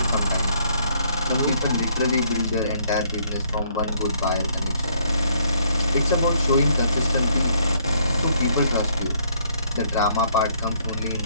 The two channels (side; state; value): both; inverted; correlation -0.66